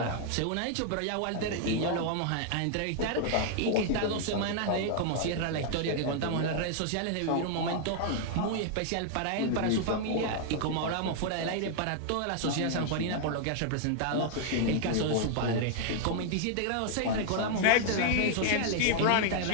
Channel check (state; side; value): different; both; correlation 0.00